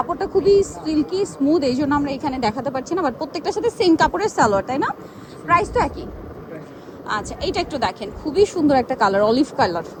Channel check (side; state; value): both; identical; correlation 1.00